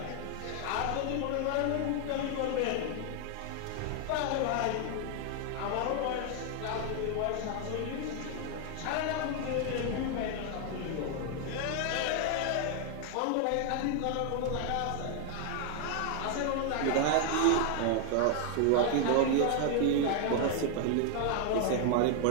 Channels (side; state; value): both; different; correlation 0.00